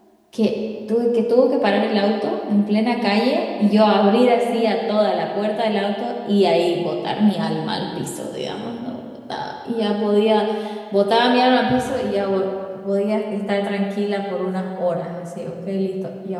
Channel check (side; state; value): both; identical; correlation 1.00